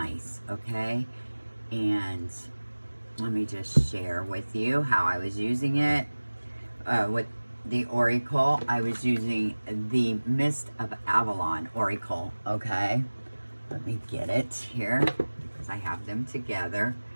okay? And let me just share with you how I was using it. With the Oracle, I was using the Mist of Avalon Oracle, okay? Let me get it here, because I have them together.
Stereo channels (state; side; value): inverted; both; correlation -1.00